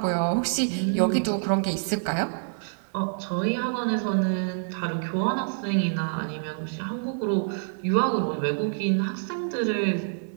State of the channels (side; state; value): left; silent; digital silence